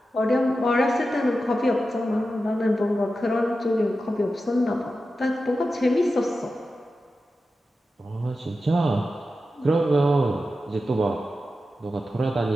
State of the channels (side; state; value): both; normal; correlation 0.92